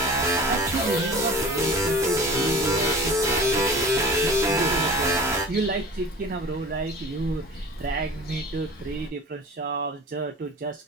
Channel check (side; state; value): both; normal; correlation 0.40